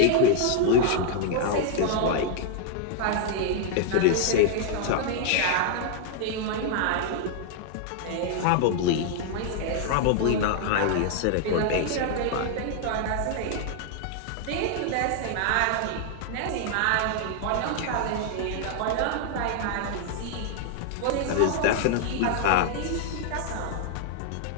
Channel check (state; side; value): different; both; correlation 0.00